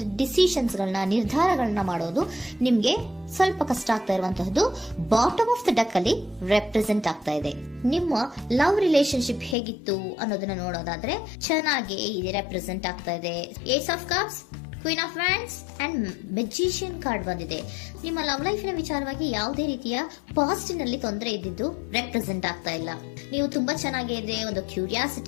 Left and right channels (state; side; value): drops out; right; at 9.6 s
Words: ಡಿಸಿಷನ್ಸ್ ಗಳನ್ನ, ನಿರ್ಧಾರಗಳನ್ನ ಮಾಡೋದು ನಿಮ್ಗೆ ಸ್ವಲ್ಪ ಕಷ್ಟ ಆಗ್ತಾ ಇರುವಂತಹದ್ದು ಬಾಟಮ್ ಆಫ್ ದ ಡೆಕ್ ಅಲ್ಲಿ ರೆಪ್ರೆಸೆಂಟ್ ಆಗ್ತಾ ಇದೆ. ನಿಮ್ಮ ಲವ್ ರಿಲೇಶನ್ಶಿಪ್ ಹೇಗಿತ್ತು ಅನ್ನೋದನ್ನ ನೋಡೋದಾದ್ರೆ ಚೆನ್ನಾಗಿ ಇದು ರೆಪ್ರೆಸೆಂಟ್ ಆಗ್ತಾ ಇದೆ. Ace of cups, queen of wands and magician card ಬಂದಿದೆ. ನಿಮ್ಮ ಲವ್ ಲೈಫಿನ ವಿಚಾರವಾಗಿ ಯಾವುದೇ ರೀತಿಯ ಪಾಸಿಟಿವ್ ನಲ್ಲಿ ತೊಂದರೆ ಇದ್ದಿದ್ದು ರೆಪ್ರೆಸೆಂಟ್ ಆಗ್ತಾ ಇಲ್ಲ. ನೀವು ತುಂಬಾ ಚೆನ್ನಾಗಿದೆ, ಒಂದು